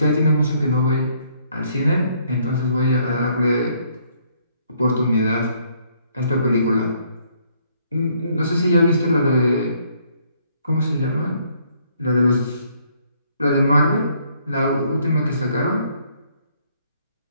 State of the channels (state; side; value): inverted; both; correlation -0.67